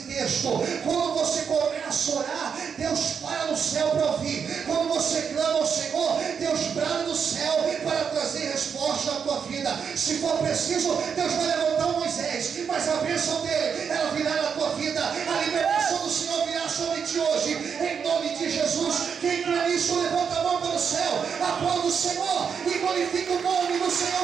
texto. Quando você começa a orar, Deus para no céu para ouvir. Quando você clama ao Senhor, Deus brada no céu para trazer resposta à tua vida. Se for preciso, Deus vai levantar um Moisés, mas a bênção dele, ela virá na tua vida. A libertação do Senhor virá sobre ti hoje, em nome de Jesus. Quem crê nisso, levanta a mão para o céu, aplauda o Senhor e glorifica o nome do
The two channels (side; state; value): left; quieter; 6.7 dB